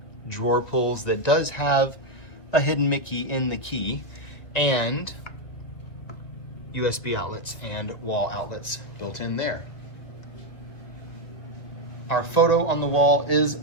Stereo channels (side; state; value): right; late; 2.2 ms